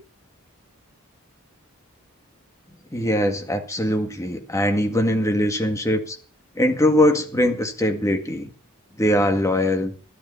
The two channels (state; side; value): normal; both; correlation 0.67